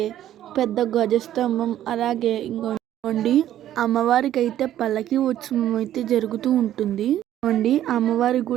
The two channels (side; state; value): left; quieter; 12.1 dB